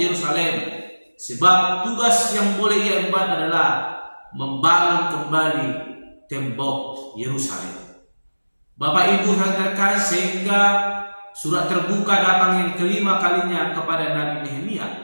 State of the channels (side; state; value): both; inverted; correlation -1.00